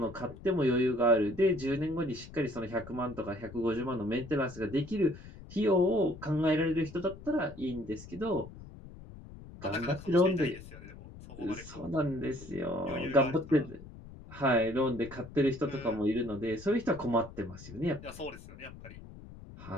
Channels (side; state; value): left; noise; rumble, 16 dB below the sound